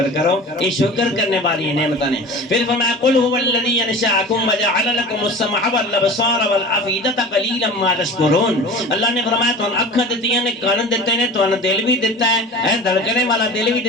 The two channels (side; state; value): both; normal; correlation 0.37